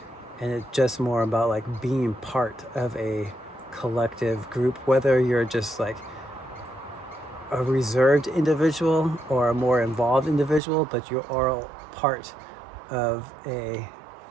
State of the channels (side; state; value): left; drops out; at 10.6 s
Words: And it's just more about like being part of a collective group, whether you're just like a reserved individual or a more involved individual, but you're all part of a